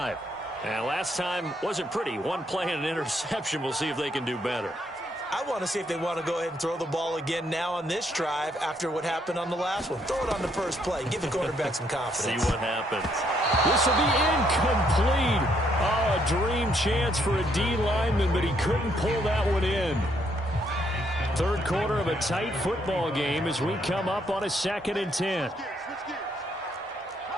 And last time wasn't pretty. 1 play and an interception. We'll see if they can do better. I want to see if they want to go ahead and throw the ball again now on this drive after what happened on the last one. Throw it on the first play. Give the quarterback some confidence. See what happens. This will be incomplete. Oh, a dream chance for a D lineman, but he couldn't pull that one in. 3rd quarter of a tight football game as we come up on a 2nd and 10.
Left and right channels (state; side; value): normal; both; correlation 0.72